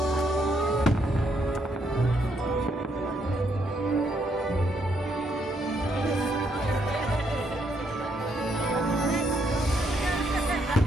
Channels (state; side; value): normal; both; correlation 0.74